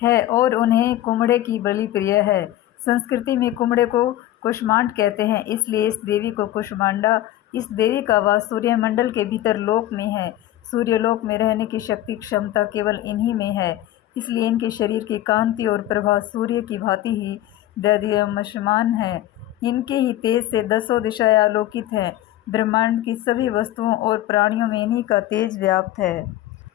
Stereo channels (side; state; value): right; quieter; 13.9 dB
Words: है और उन्हें कुम्हड़े की बलि प्रिय है। संस्कृति में कुम्हड़े को कूष्मांड कहते हैं, इसलिए इस देवी को कूष्मांडा। इस देवी का वास सूर्यमंडल के भीतर लोक में है। सूर्यलोक में रहने की शक्ति क्षमता केवल इन्हीं में है, इसलिए इनके शरीर की कांति और प्रभा सूर्य की भांति ही दैदीप्यमान है। इनके ही तेज से 10 दिशाएं आलोकित हैं। ब्रह्मांड की सभी वस्तुओं और प्राणियों में इन्हीं का तेज व्याप्त है।